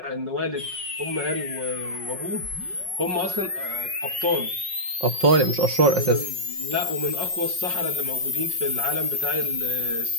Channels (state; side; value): late; left; 5.4 ms